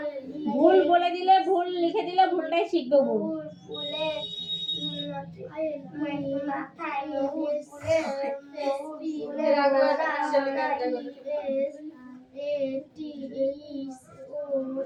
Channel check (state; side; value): identical; both; correlation 1.00